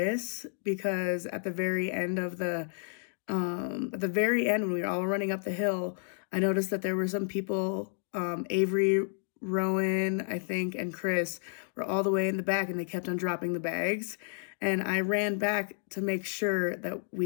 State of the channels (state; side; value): silent; right; 57 dB below the other